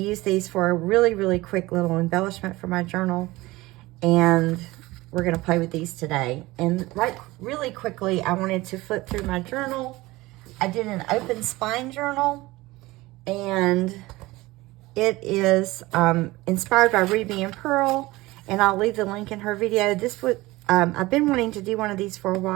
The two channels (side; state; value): left; quieter; 19.9 dB